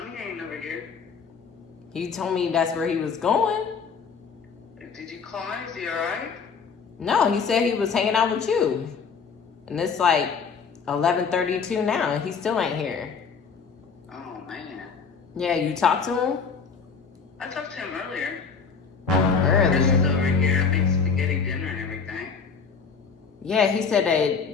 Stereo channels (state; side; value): quieter; right; 5.6 dB